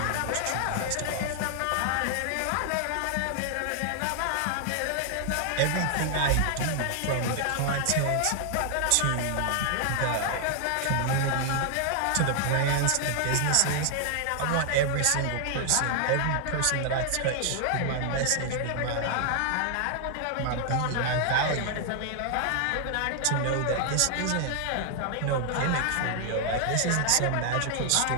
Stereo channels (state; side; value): different; both; correlation 0.00